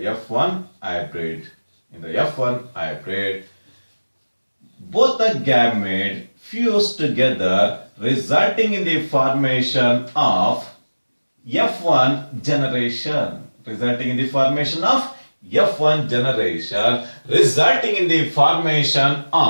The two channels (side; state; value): both; inverted; correlation -1.00